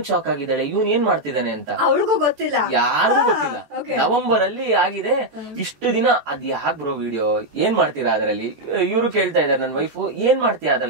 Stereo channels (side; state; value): left; late; 14 ms